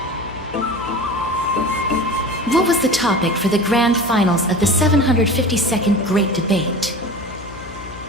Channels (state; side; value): noise; left; hum, 16 dB below the sound